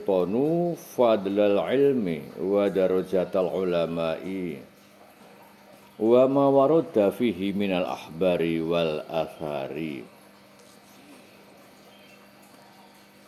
fadlal ilmi wa darajatal ulama'i wa ma warada fihi minal ahbari wal athari.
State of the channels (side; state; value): both; identical; correlation 1.00